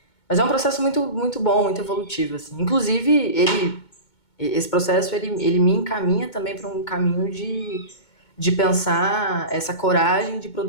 Mas é um processo muito, muito bom, muito evolutivo, assim. Inclusive, esse processo, ele me encaminha também para um caminho de pensar essa coragem de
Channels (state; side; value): late; right; 2.2 ms